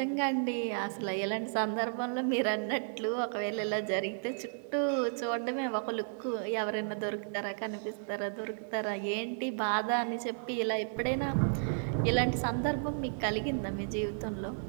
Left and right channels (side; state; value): left; silent; digital silence